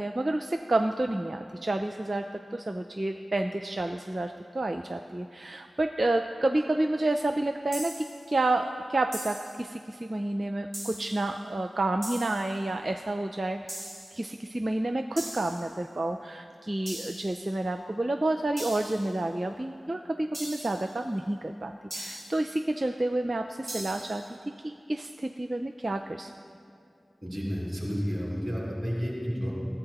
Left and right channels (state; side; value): normal; both; correlation 0.96